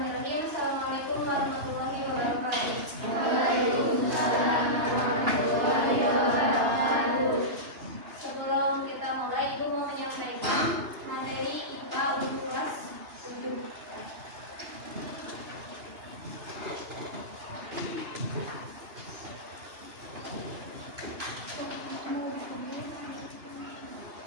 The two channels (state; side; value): late; left; 2.9 ms